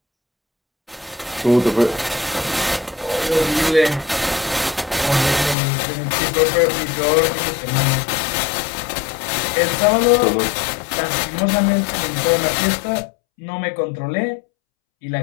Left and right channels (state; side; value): drops out; right; at 5.6 s